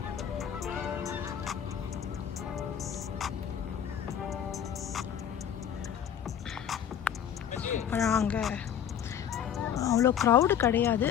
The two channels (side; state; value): right; quieter; 9.2 dB